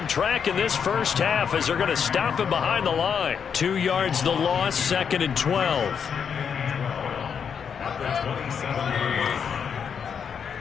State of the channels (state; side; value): quieter; right; 7.1 dB